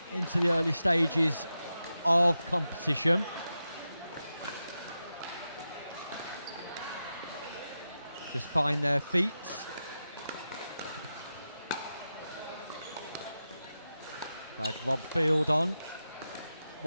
into the early stages of competition. Just find their feet. I had Rob Field on,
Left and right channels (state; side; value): inverted; both; correlation -0.90